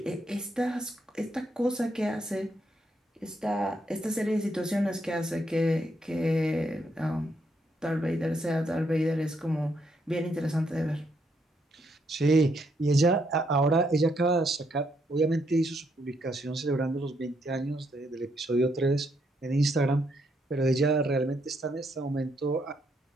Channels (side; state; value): both; normal; correlation 0.75